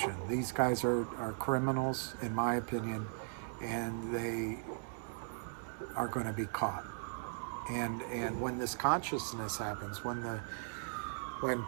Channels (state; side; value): silent; left; digital silence